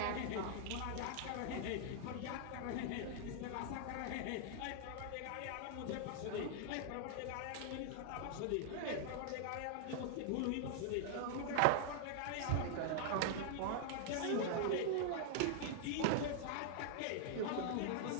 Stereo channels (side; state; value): both; different; correlation -0.01